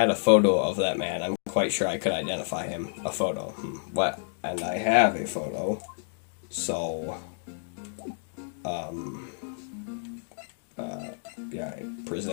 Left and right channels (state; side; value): silent; right; digital silence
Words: a photo of that man, I'm quite sure I could identify him. A photo. What? And I have a photo. So, guy